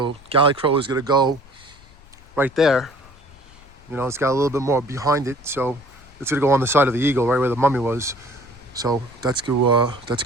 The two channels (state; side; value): noise; left; rumble, 24 dB below the sound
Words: Galley Crow is going to go right there. It's got a little bit more behind it. So it's going to go on the side of the eagle, right where the mummy was. So that's going